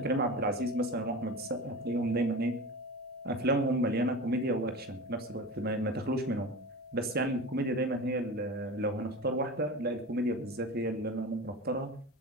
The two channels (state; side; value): normal; both; correlation 0.30